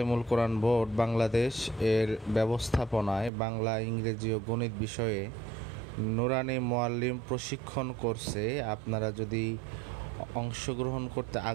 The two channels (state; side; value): drops out; left; at 3.3 s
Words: কোরআন বোর্ড বাংলাদেশ এর ব্যবস্থাপনায় বাংলা, ইংরেজি ও গণিত বিষয়ে নুরানী মুআল্লিম প্রশিক্ষণ কোর্সে আপনারা যদি অংশগ্রহণ করতে